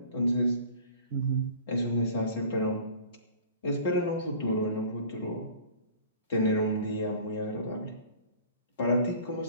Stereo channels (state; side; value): inverted; both; correlation -0.46